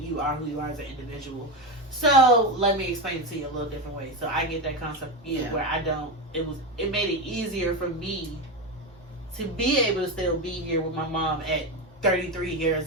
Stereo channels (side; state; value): both; normal; correlation 0.15